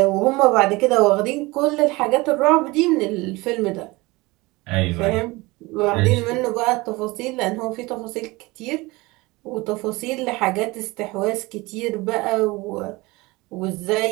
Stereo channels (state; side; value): quieter; left; 22.5 dB